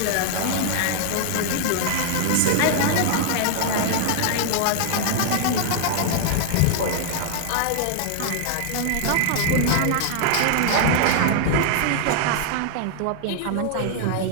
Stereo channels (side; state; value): both; different; correlation 0.00